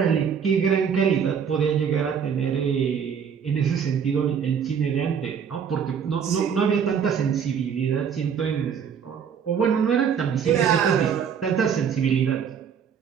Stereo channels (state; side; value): quieter; left; 7.3 dB